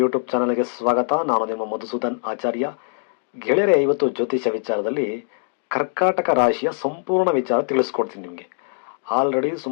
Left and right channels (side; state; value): right; silent; digital silence